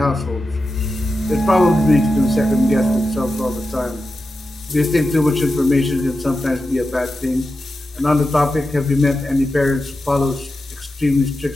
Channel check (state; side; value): normal; both; correlation 0.91